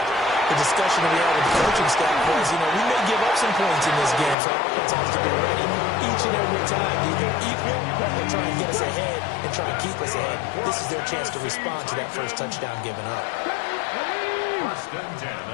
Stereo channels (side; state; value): right; drops out; at 4.4 s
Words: the discussion that we had with the coaching staff was, we may give up some points in this game, so our offense has to be ready each and every time, either equal or try and get us ahead and try and keep us ahead. This is their chance to respond to that first touchdown given up. 1st and 10